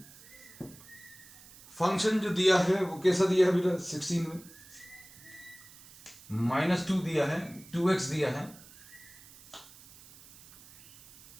फंक्शन जो दिया है वो कैसा दिया है बेटा? 16 में -2 दिया है, 2x दिया है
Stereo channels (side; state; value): right; noise; hiss, 21 dB below the sound